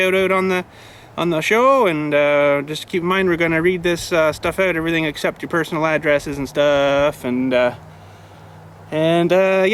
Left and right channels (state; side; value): identical; both; correlation 1.00